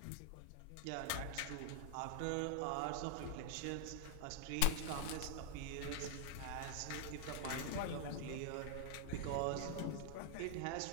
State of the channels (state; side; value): different; both; correlation 0.00